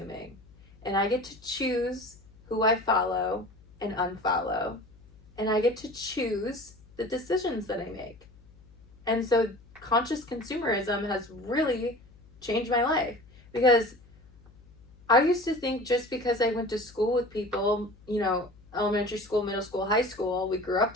And I get to choose who I follow and unfollow. And I get to choose the decisions that I make. And so conscious consumerism has really changed my life, because I used to think just because I went to school with people, elementary school, middle school, high school, we grew up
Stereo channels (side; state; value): left; noise; hum, 25 dB below the sound